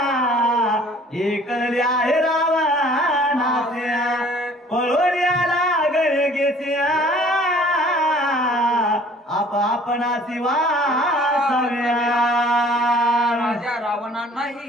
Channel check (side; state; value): both; normal; correlation 0.53